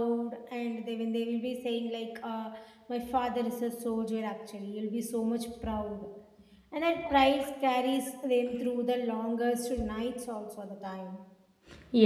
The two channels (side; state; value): both; identical; correlation 1.00